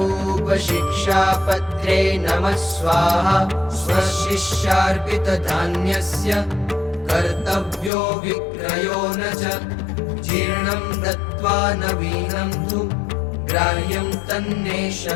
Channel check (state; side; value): drops out; right; at 7.9 s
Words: शिक्षापत्रे नमः स्वाहा। स्वशिष्यार्पितधान्यस्य कर्तव्यो विक्रयो न च जीर्णं दत्त्वा नवीनं तु ग्राह्यं तन्नेष